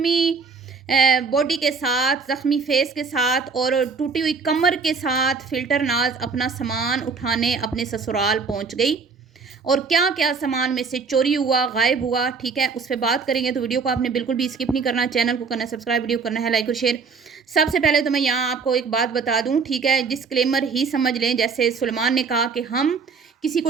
बॉडी के साथ, ज़ख्मी फेस के साथ और टूटी हुई कमर के साथ फ़िल्टर नाज़ अपना सामान उठाने अपने ससुराल पहुँच गई। और क्या-क्या सामान में से चोरी हुआ, गायब हुआ, ठीक है? उस पे बात करेंगे, तो वीडियो को आपने बिल्कुल भी स्किप नहीं करना, चैनल को करना है सब्सक्राइब, वीडियो करना है लाइक और शेयर। सबसे पहले तो मैं यहाँ आपको एक बात बता दूँ, ठीक है? डिस्क्लेमर ही समझ लें, जैसे सुलेमान ने कहा कि हम किसी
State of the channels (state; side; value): quieter; left; 5.0 dB